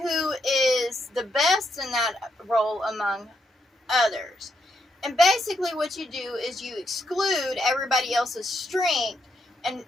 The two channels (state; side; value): normal; both; correlation 0.79